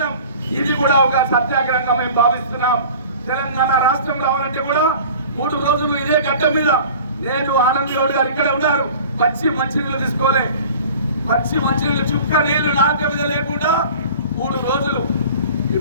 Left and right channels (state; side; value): inverted; both; correlation -0.42